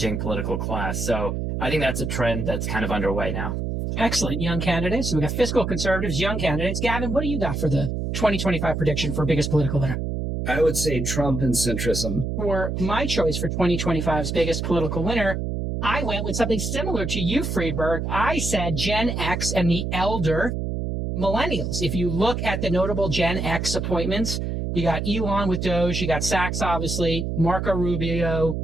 political class. So I think that's a trend that's kind of underway now. Excellent. Young candidates. So we got fiscal conservatives, young candidates. Gavin, what do you got for the 2025 prediction for biggest political winner? I would say Trump and centrism. For my choice for 2025's biggest political winner, I went with something similar to you, Friedberg. I said Gen X and the elder millennials. If you look at the notable Gen X appointments, you got Elon with Doge, you got Sachs, obviously, Marco Rubio.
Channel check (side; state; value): right; noise; hum, 2 dB below the sound